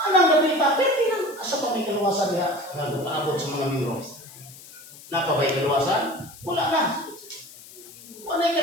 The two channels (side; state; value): left; noise; hiss, 19 dB below the sound